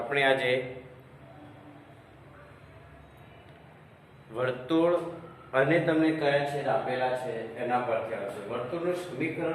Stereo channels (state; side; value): identical; both; correlation 1.00